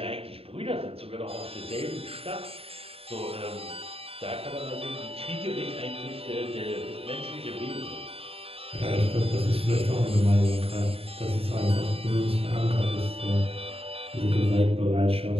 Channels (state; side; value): late; left; 0.28 ms